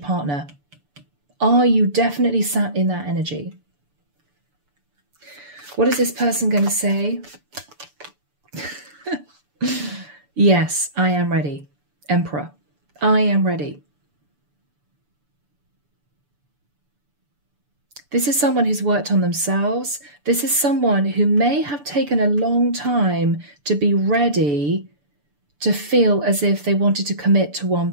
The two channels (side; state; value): left; late; 6.9 ms